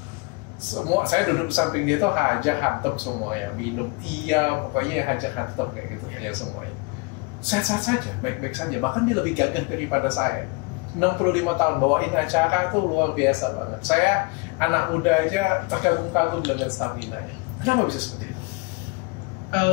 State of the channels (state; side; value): quieter; right; 28.8 dB